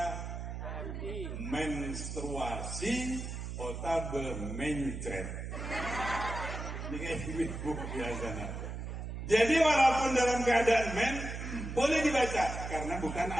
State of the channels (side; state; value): right; noise; hum, 6 dB below the sound